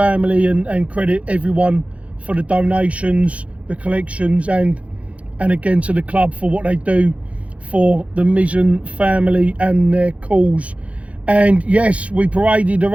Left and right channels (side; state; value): left; late; 0.064 ms